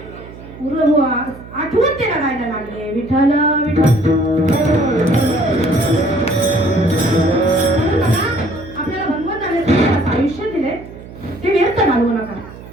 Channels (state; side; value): noise; right; hum, 16 dB below the sound